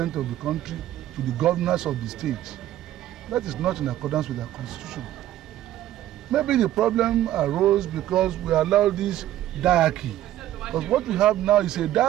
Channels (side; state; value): left; quieter; 13.4 dB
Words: of the country to the governors of the states. That is not in accordance with our constitution. Maybe the problem arose because we allowed this diarchy. Because what we have now is a